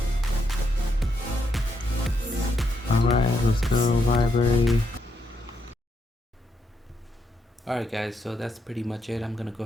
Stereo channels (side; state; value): both; normal; correlation 0.79